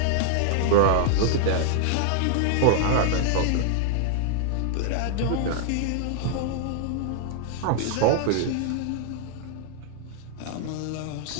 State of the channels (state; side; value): different; both; correlation -0.01